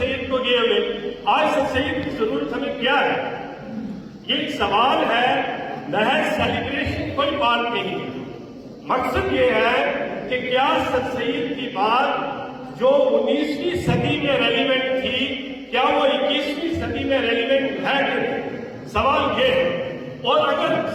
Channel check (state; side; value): identical; both; correlation 1.00